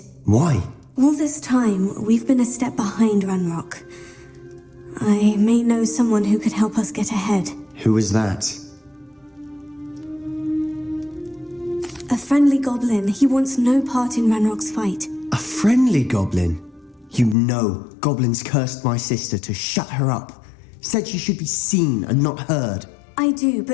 Why? All this time, we've been a step behind Ranrock. I may know someone who could help us get ahead. Who is that? A friendly goblin. He wants no part in Ranrock's fight. A friendly goblin? You know, goblins cursed my sister to shut her up. Said she should be seen and not heard. I do,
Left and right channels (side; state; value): right; drops out; at 17.4 s